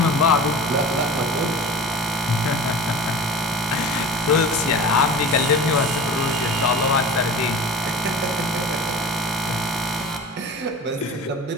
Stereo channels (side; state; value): both; normal; correlation 0.36